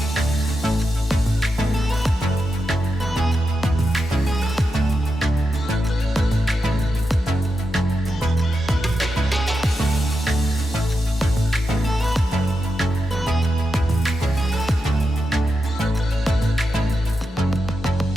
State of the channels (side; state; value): both; normal; correlation 0.87